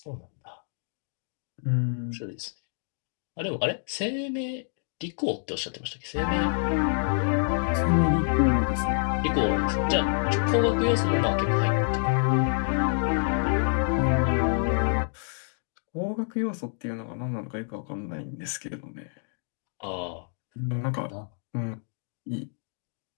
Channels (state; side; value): silent; right; digital silence